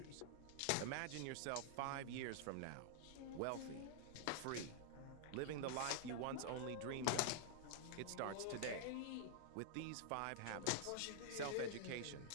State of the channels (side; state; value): both; different; correlation -0.01